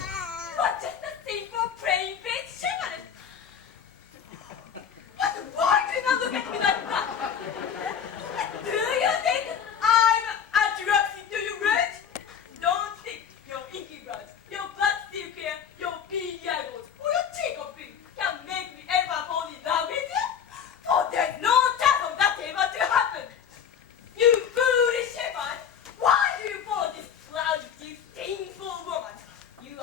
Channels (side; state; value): right; quieter; 7.8 dB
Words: But just a simple plain face shepherd. But why do you not look at me like that? Do you think I'm attracted to you, Red? Don't think your inky blood, your blood still clear, your beady eyeballs, or your cheek of pink can make me ever fall in love with you. For there's no chance of that ever to happen. You foolish shepherd! Why do you follow this cloud, disdainful woman? You